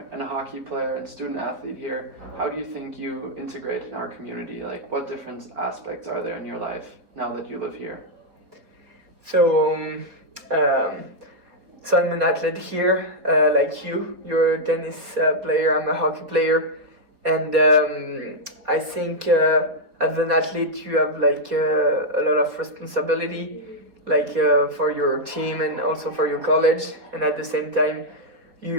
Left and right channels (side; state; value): left; late; 4.2 ms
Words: and a hockey player and student athlete here, how do you think you integrate in our community? Like, what different aspects are there in your life now that you live here? So I'm an athlete here, like you. You're a tennis player, I'm a hockey player. And I think as an athlete you have like a lot of responsibility, like for your team and also for your college. And at the same time,